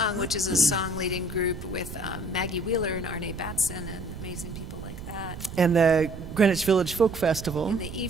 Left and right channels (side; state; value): right; noise; rumble, 10 dB below the sound